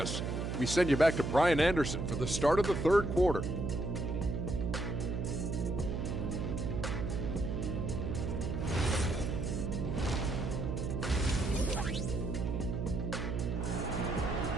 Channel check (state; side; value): noise; right; hum, 2 dB below the sound